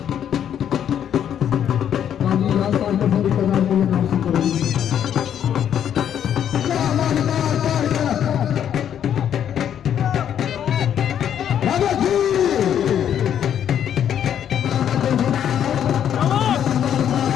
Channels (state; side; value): quieter; right; 9.5 dB